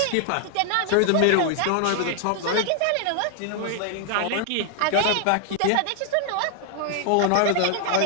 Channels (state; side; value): different; both; correlation 0.00